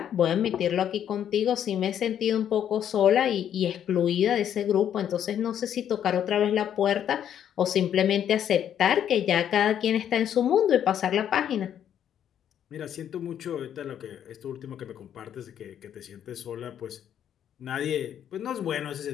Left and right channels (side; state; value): right; quieter; 9.7 dB